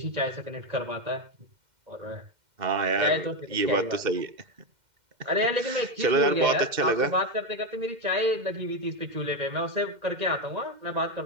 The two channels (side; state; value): left; late; 2.1 ms